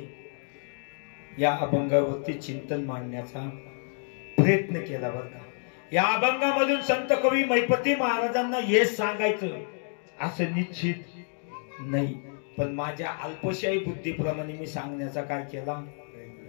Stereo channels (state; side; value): silent; right; 59 dB below the other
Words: या अभंगावरती चिंतन मांडण्याचा प्रयत्न केला बरं का. या अभंगामधून संत कवी महिपती महाराजांना हेच सांगायचं असं निश्चित नाही, पण माझ्या अल्पशाही बुद्धीप्रमाणे मी सांगण्याचा काय केला,